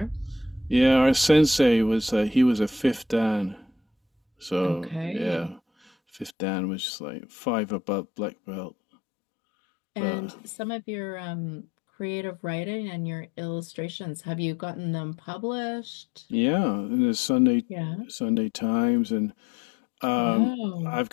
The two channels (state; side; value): drops out; right; at 6.4 s